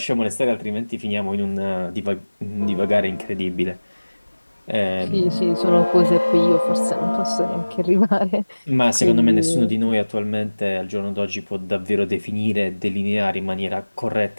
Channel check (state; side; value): inverted; both; correlation -1.00